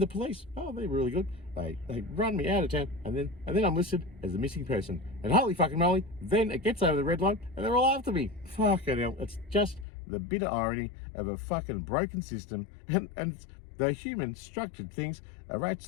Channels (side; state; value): right; drops out; at 9.9 s